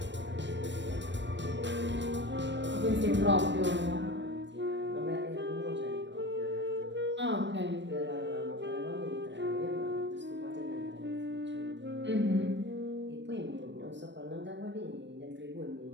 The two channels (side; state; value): left; late; 0.53 ms